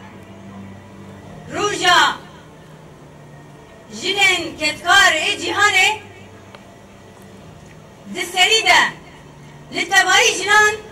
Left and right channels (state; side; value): identical; both; correlation 1.00